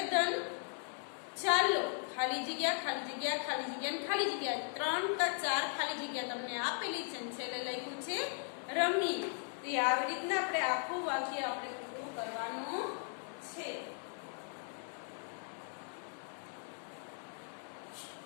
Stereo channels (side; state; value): right; silent; 53 dB below the other